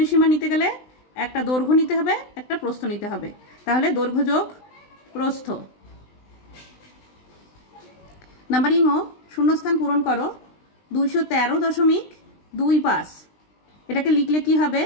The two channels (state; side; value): late; right; 20 ms